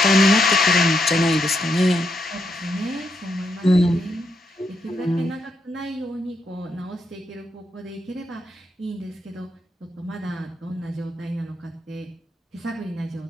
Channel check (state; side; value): normal; both; correlation 0.80